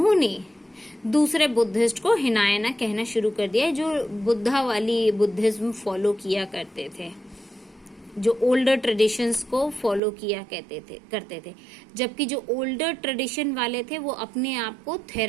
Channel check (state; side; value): drops out; left; at 10.0 s